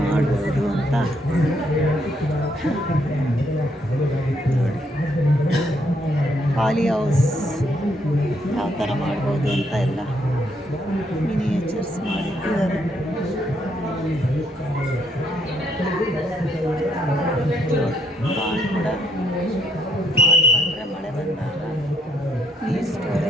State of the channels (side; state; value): both; normal; correlation 0.72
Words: ಮಾಡ್ಬೋದು ಅಂತ ನೋಡಿ. ಪಾಲಿ ಹೌಸ್ ಯಾವ ಥರ ಮಾಡ್ಬೋದು ಅಂತ ಎಲ್ಲ ಮಿನಿಯೇಚರ್ಸ್ ಮಾಡಿಟ್ಟಿದ್ದಾರೆ. ಪಾಂಡ್ ಕೂಡ ಮಾಡಿಕೊಂಡ್ರೆ ಮಳೆ ಬಂದಾಗ ನೀರು